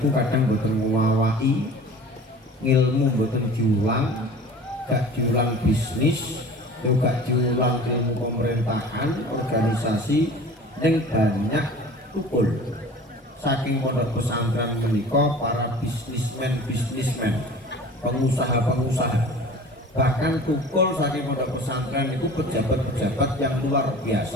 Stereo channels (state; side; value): normal; both; correlation 0.42